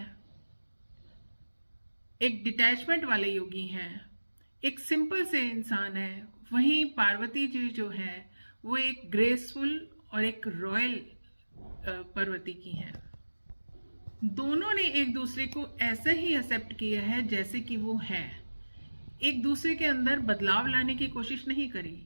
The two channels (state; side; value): inverted; both; correlation -1.00